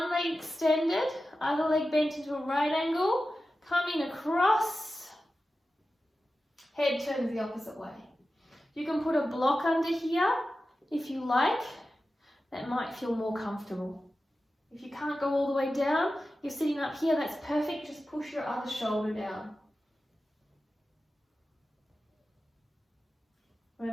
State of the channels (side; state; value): both; normal; correlation 0.93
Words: leg extended, other leg bent into a right angle, coming across, head turns the opposite way. You can put a block under here if you like. That might feel more comfortable. If you can't go all the way down, you're sitting up here, that's perfect. Just push your other shoulder down.